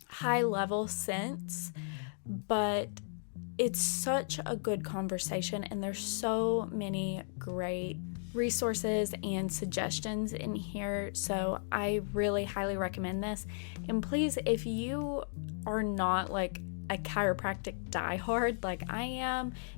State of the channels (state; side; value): silent; right; digital silence